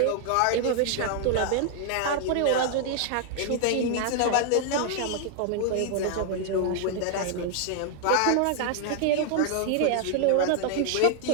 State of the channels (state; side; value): different; both; correlation 0.00